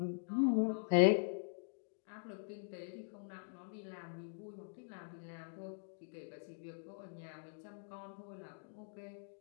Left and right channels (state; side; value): silent; right; digital silence